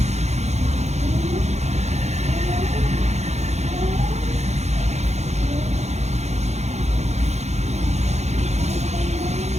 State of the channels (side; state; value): left; late; 0.32 ms